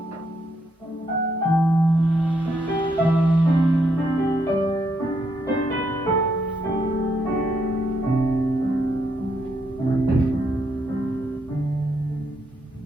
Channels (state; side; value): normal; both; correlation 0.76